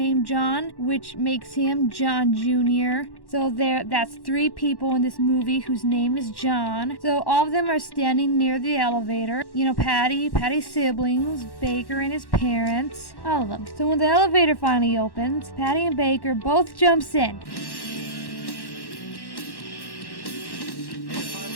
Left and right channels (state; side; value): late; right; 1.1 ms